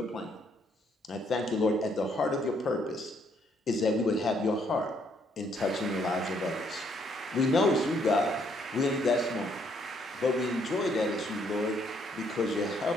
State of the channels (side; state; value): both; normal; correlation 0.69